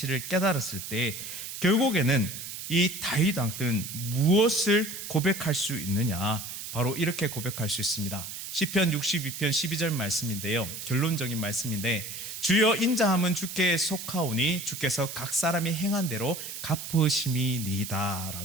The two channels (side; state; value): right; noise; hiss, 8 dB below the sound